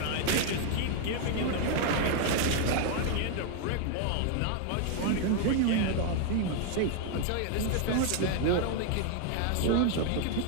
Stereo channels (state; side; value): different; both; correlation 0.00